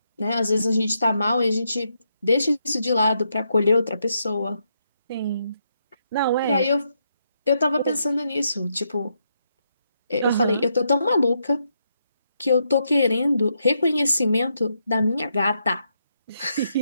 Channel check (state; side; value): inverted; both; correlation -0.80